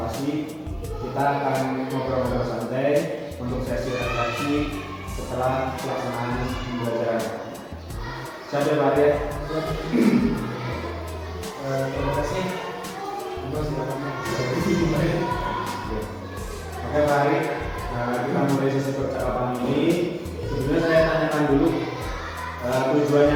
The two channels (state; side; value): identical; both; correlation 1.00